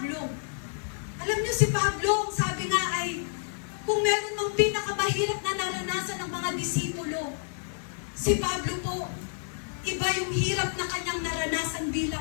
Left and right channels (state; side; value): silent; right; digital silence